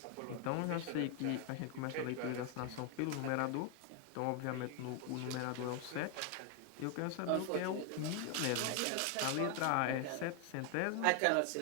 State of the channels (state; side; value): different; both; correlation 0.01